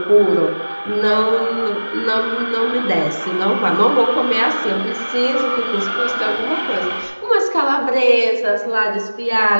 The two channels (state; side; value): inverted; both; correlation -1.00